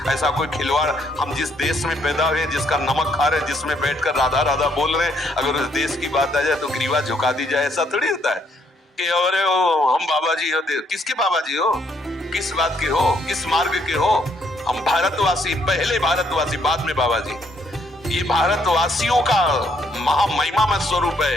ऐसा कोई खिलवाड़, हम जिस देश में पैदा हुए, जिसका नमक खा रहे, जिसमें बैठकर राधा राधा बोल रहे हैं, अगर उस देश की बात आ जाए तो ग्रीवा झुका दी जाए, ऐसा थोड़ी होता है कि अरे हम बाबा जी होते। किसके बाबा जी हो? किस बात के हो? किस मार्ग के हो? हम भारतवासी, पहले भारतवासी, बाद में बाबा जी। ये भारतवासियों का महामहिमा में स्वरूप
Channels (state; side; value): normal; both; correlation 0.71